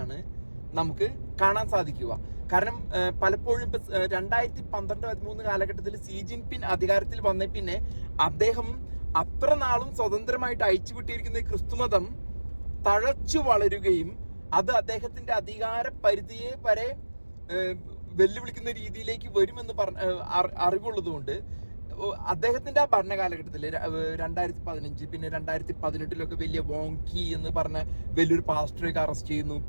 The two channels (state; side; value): inverted; both; correlation -1.00